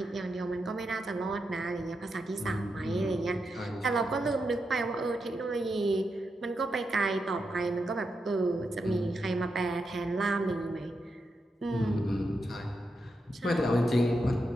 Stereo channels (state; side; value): normal; both; correlation 0.85